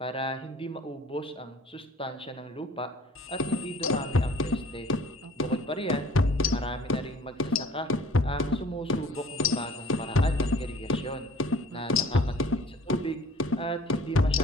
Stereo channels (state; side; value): normal; both; correlation 0.51